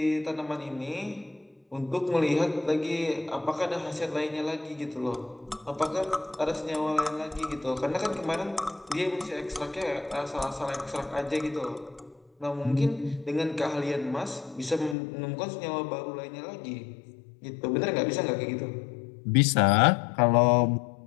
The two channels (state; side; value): drops out; right; at 15.0 s